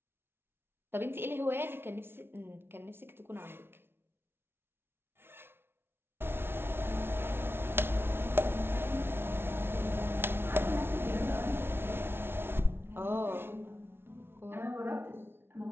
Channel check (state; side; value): late; left; 0.11 ms